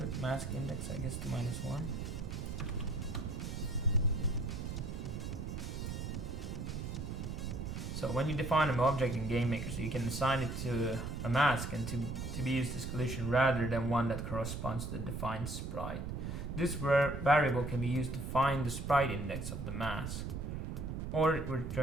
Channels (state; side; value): noise; right; rumble, 5 dB below the sound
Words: mask index, I guess, to -1. So when you define an object in GameMaker, so you can assign it to a mask and to be used as collision rather than one that corresponds to the defined sprite. This variable can be used to find the sprite index of the mask, or it will